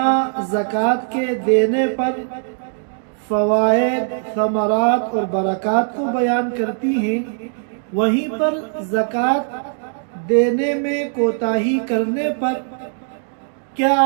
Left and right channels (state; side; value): silent; left; digital silence